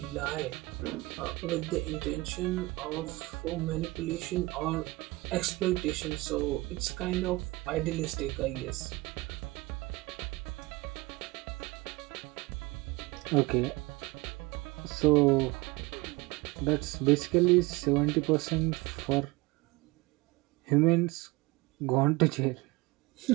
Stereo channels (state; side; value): quieter; left; 21.8 dB